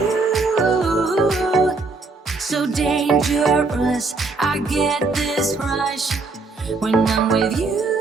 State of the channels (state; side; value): quieter; left; 3.9 dB